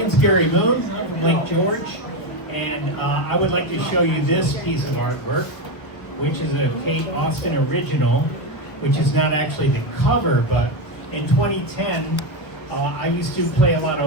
Gary Moon. I'm from Lake George, and I would like to show you this piece of artwork, which is a Kate Austin original, which is not actually the cover, but in 2010, I used to play a lot of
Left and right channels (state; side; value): late; right; 1.3 ms